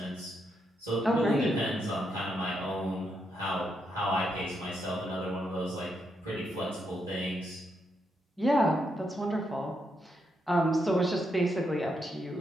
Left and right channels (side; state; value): both; normal; correlation 0.80